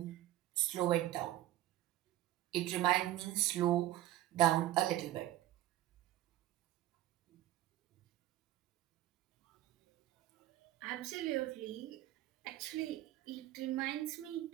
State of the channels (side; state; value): left; quieter; 14.1 dB